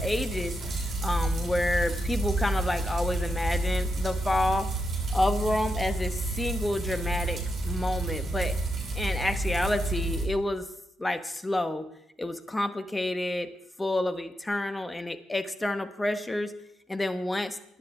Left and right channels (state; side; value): normal; both; correlation 0.86